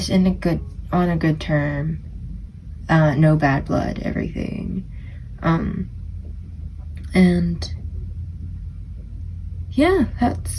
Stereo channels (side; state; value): both; identical; correlation 1.00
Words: on a good term. No bad blood, everything. And yeah,